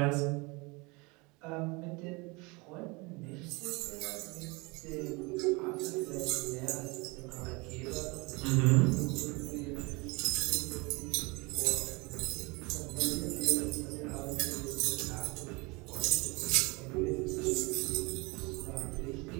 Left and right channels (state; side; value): quieter; left; 26.8 dB